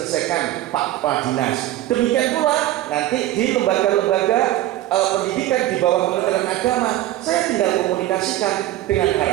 Pak Kepala Dinas. Demikian pula nanti di lembaga-lembaga pendidikan di bawah Kementerian Agama, saya tinggal komunikasikan dengan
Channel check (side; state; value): left; quieter; 14.5 dB